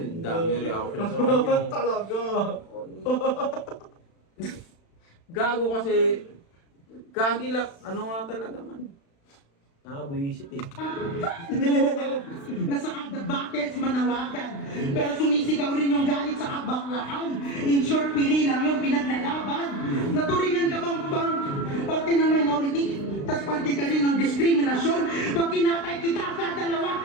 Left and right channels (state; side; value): late; right; 36 ms